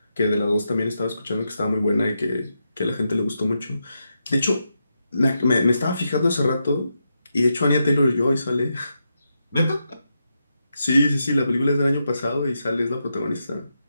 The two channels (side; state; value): both; inverted; correlation -0.85